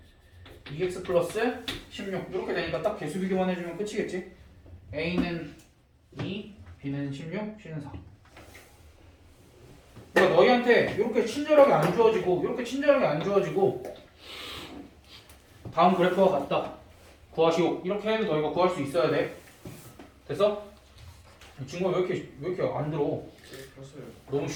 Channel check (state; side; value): identical; both; correlation 1.00